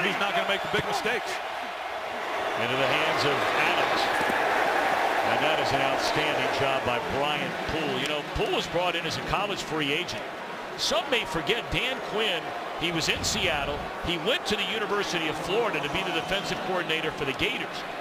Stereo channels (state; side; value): identical; both; correlation 1.00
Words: who's not going to make the big mistakes. Into the hands of Adams. And that is an outstanding job by Brian Poole. You know, Poole was brought in as a college free agent. Some may forget Dan Quinn. He was in Seattle. He went to the University of Florida to be the defensive coordinator for the Gators.